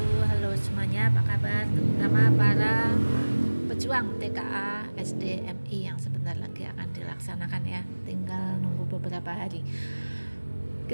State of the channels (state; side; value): inverted; both; correlation -1.00